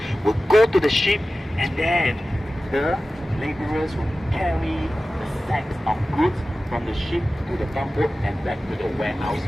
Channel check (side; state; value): both; normal; correlation 0.95